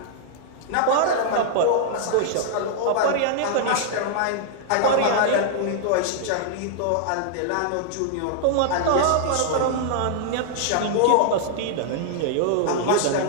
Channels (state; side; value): different; both; correlation -0.01